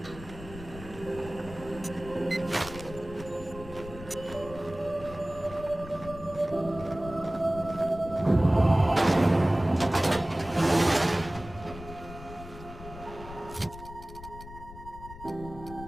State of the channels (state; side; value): noise; left; rumble, 15 dB below the sound